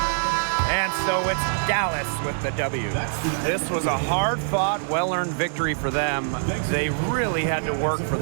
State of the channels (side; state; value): left; silent; digital silence